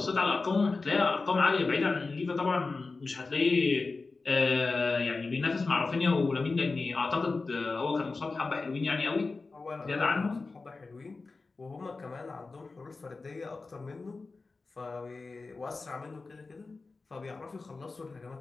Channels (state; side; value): quieter; right; 3.9 dB